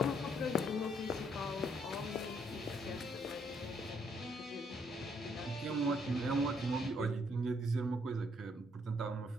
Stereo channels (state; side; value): normal; both; correlation 0.70